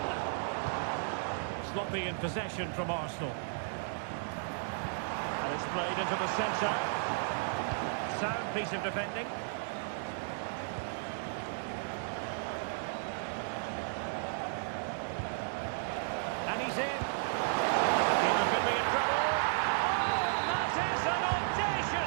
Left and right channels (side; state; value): left; silent; digital silence